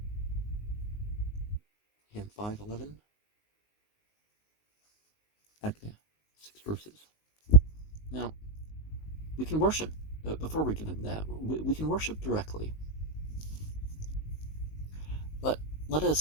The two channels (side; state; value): right; late; 19 ms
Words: Hymn 5.11, Agne, 6 verses. Now, we can worship, before we get into that, we can worship directly. But let